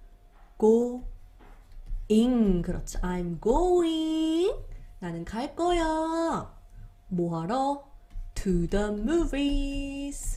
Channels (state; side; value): identical; both; correlation 1.00